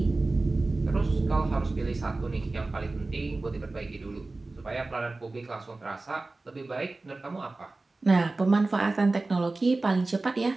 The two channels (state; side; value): quieter; left; 3.2 dB